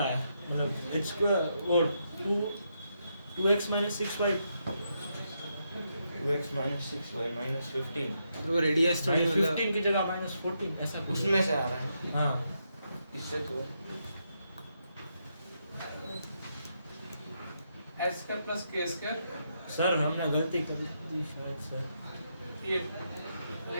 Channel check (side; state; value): both; inverted; correlation -0.80